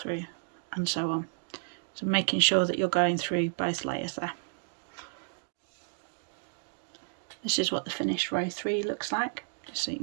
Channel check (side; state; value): left; silent; digital silence